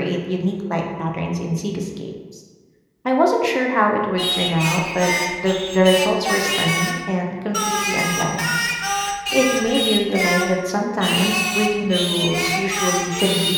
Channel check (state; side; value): identical; both; correlation 1.00